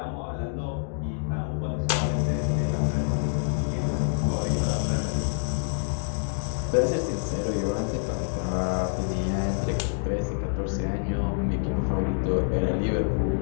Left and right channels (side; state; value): right; silent; digital silence